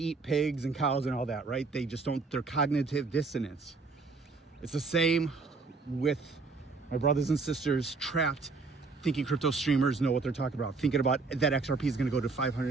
pigs and cows and all that, right? They just don't, their cognitive dissonance. It's the same with my brothers and sisters trapped thinking crypto streamers know what they're talking about, thinking about that XRP is going to go to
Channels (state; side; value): quieter; left; 4.2 dB